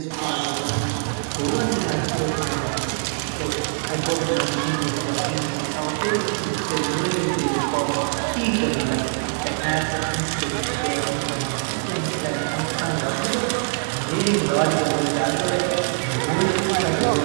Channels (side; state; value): left; silent; 63 dB below the other